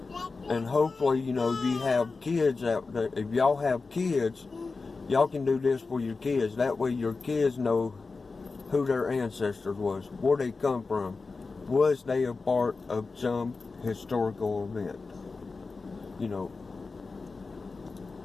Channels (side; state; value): right; quieter; 4.1 dB